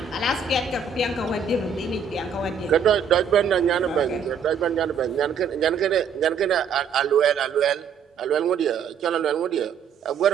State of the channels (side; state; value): left; quieter; 6.4 dB